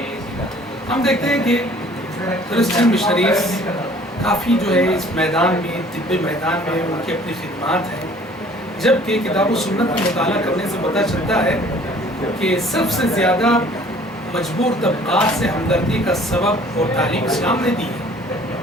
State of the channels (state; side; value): normal; both; correlation 0.53